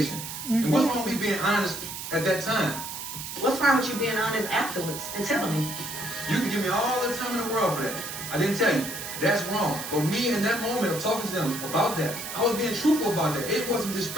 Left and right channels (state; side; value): noise; right; hiss, 8 dB below the sound